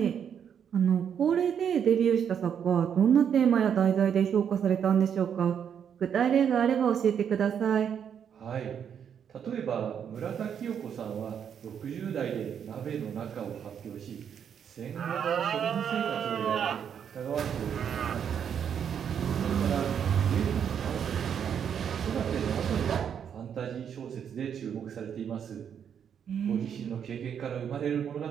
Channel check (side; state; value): left; quieter; 8.1 dB